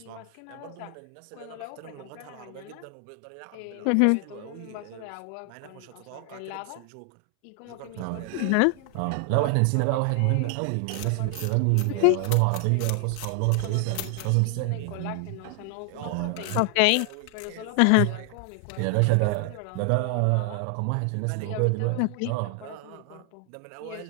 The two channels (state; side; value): different; both; correlation 0.00